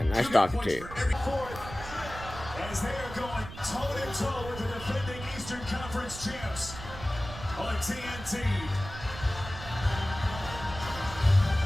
nice talking to you. As they are going toe-to-toe with the defending Eastern Conference champs on TNT.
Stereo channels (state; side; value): noise; right; rumble, 12 dB below the sound